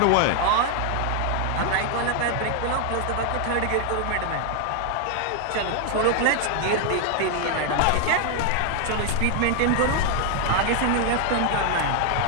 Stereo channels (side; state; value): both; different; correlation 0.00